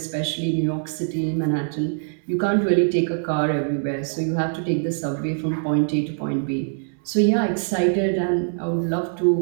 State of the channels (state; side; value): silent; left; digital silence